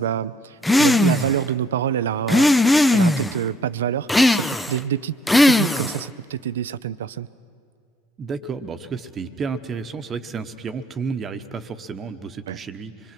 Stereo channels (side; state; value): both; normal; correlation 0.65